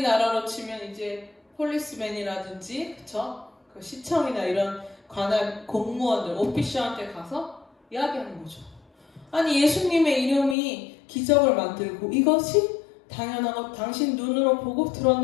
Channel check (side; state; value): right; drops out; at 10.6 s